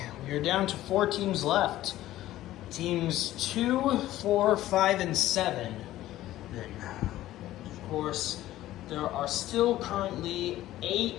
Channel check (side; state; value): right; quieter; 14.7 dB